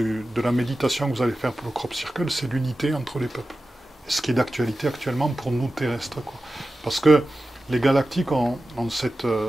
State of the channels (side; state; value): both; normal; correlation 0.94